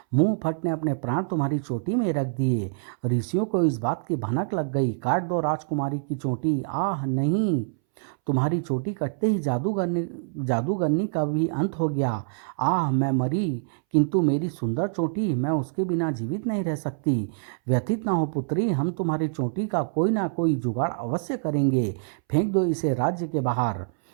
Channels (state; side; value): silent; left; 61 dB below the other